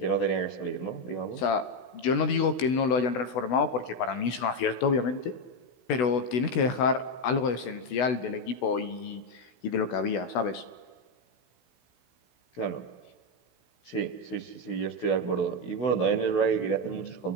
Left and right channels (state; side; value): late; right; 16 ms